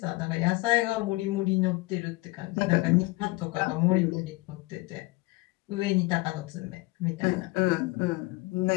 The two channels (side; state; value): right; quieter; 22.3 dB